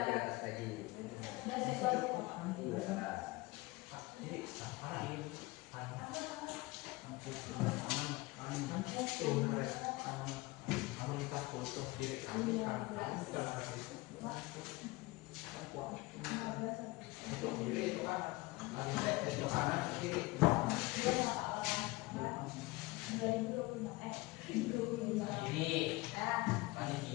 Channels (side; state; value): right; quieter; 22.1 dB